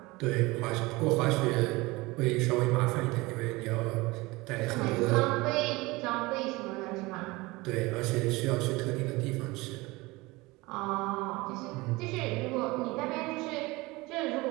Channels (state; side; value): quieter; left; 22.3 dB